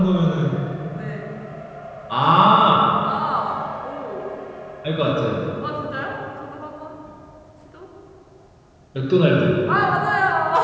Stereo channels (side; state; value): both; identical; correlation 1.00